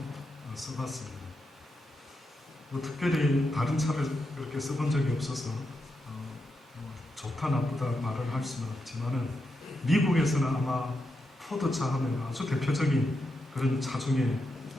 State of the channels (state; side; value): normal; both; correlation 0.85